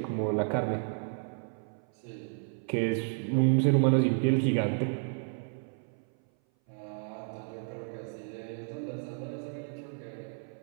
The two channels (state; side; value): silent; left; 57 dB below the other